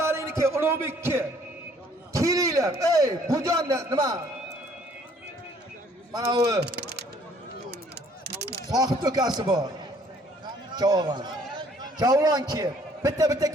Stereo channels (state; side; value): normal; both; correlation 0.60